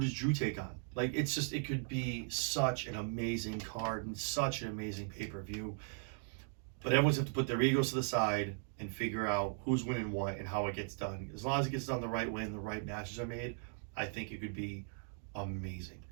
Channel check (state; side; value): silent; left; 52 dB below the other